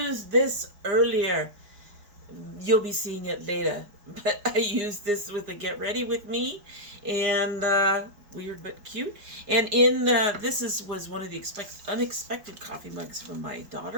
this earlier. You'll be seeing it later, but I used this with the Get Ready With Me and weird but cute. And in was one of the unexpected coffee mugs from my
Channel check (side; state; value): left; late; 4.9 ms